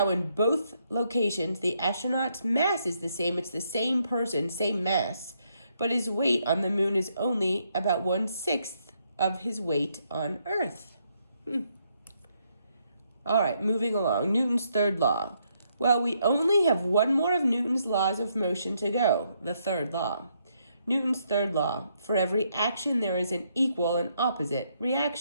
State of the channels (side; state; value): both; inverted; correlation -0.75